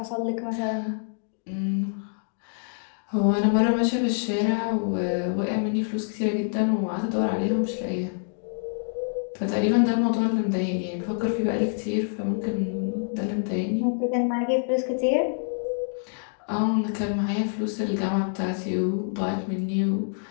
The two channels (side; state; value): right; silent; digital silence